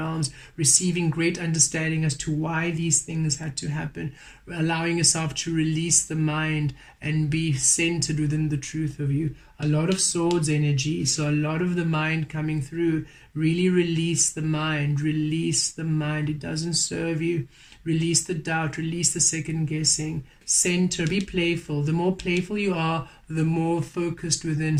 receiving great understanding as to why these things had to happen, allowing yourself to release the mind and be centered within the truth of you. A lot of swords energy, so a lot of the mind coming through. Really release the mind, it doesn't serve you. Release the doubt, release the second guessing. Center, be playful. The more playful you are, the more focused within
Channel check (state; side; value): identical; both; correlation 1.00